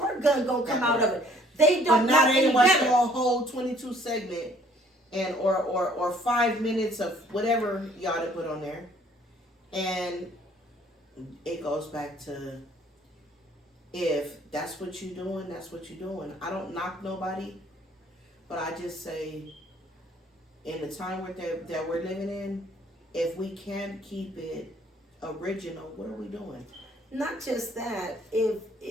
gun gonna come out of it. They but don't know not any anyone better. saw a whole 22 segment and or 5 minutes of whatever y'all to put on there. And it goes back to if that's what you're doing, that's what you're doing. I don't knock nobody, but I just say in the time that we're living in, if we can't keep it original, what are we doing? Not just that, if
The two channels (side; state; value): both; normal; correlation 0.59